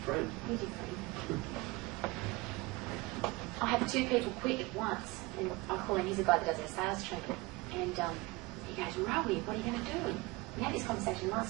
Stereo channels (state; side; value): quieter; left; 23.3 dB